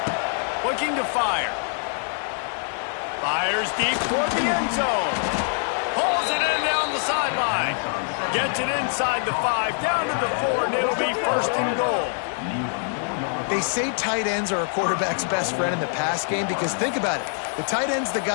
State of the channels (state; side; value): silent; right; 59 dB below the other